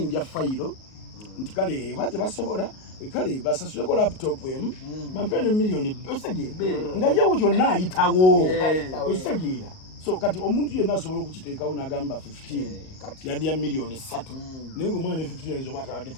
fayiro nti kale oba tebasobola kale basasuleko laptop emu bampewe ne milioni otegere nga yewo kyonna ayitawo otegera so kati omuntu yenna asobola okukiteekawo n'agamba 15 yadde ya milioni 3 naye ng'omwana ne 15 ayinza oba atabadde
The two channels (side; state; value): right; late; 38 ms